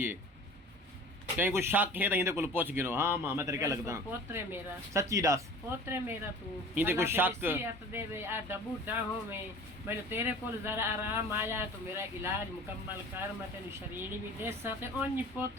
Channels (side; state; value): both; normal; correlation 0.42